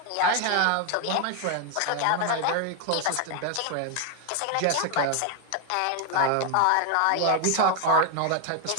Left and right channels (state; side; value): different; both; correlation 0.01